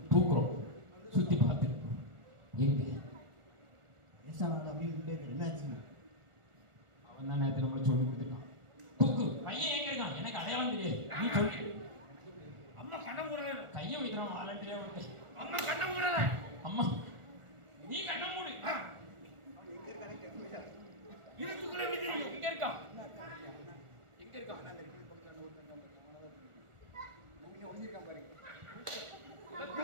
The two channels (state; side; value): late; left; 1.4 ms